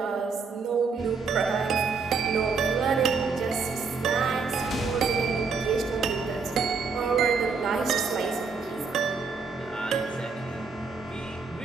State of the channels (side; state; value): left; quieter; 5.0 dB